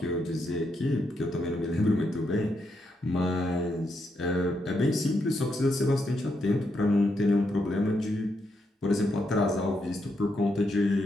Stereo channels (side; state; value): both; normal; correlation 0.81